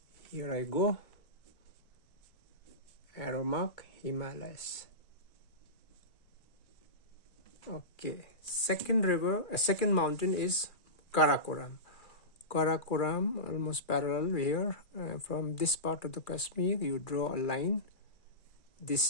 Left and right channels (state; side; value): late; right; 2.4 ms